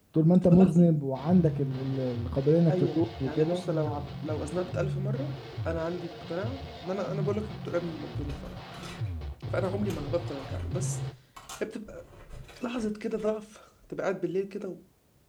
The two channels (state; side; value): identical; both; correlation 1.00